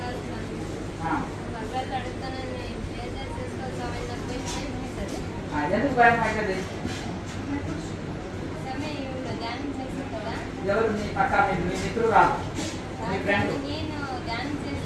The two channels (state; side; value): identical; both; correlation 1.00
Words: ఎందుకు భయం అవుతుంది ఎవరు మీ పక్క మీ మిత్రుడు రాదు మీ friend